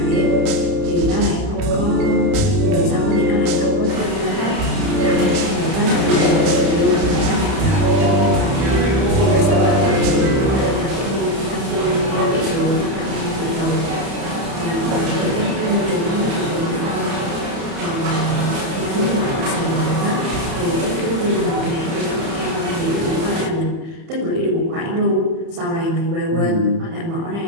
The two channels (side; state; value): left; late; 31 ms